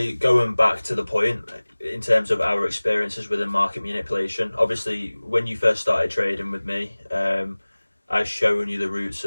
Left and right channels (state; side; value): inverted; both; correlation -1.00